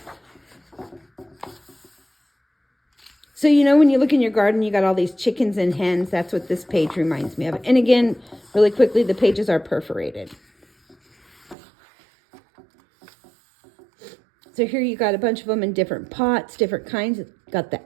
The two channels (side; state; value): left; drops out; at 11.6 s